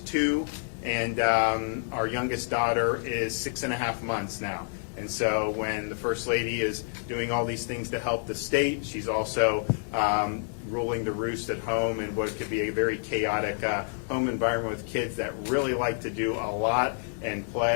2, and our youngest daughter is 6.5 months now. And so when the First Lady is doing all these things to help the state, she's also ruling the roost at home in what could be a very chaotic home environment with kids that really like to do a lot and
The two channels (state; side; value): silent; right; 59 dB below the other